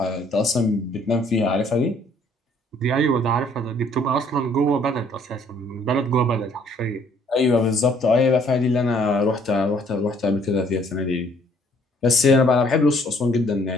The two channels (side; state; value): both; normal; correlation 0.62